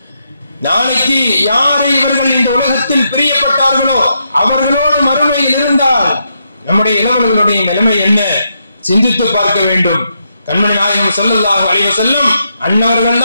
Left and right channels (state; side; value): inverted; both; correlation -0.81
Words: நாளைக்கு யாரை இவர்கள் இந்த உலகத்தில் பிரியப்பட்டார்களோ அவர்களோடு மறுமையில் இருந்தால் நம்முடைய இளவல்களுடைய நிலைமை என்ன சிந்தித்து பார்க்க வேண்டும். கண்மணி நாயகம் ஸல்லல்லாஹு அலைஹி வஸல்லம் அன்னவர்கள்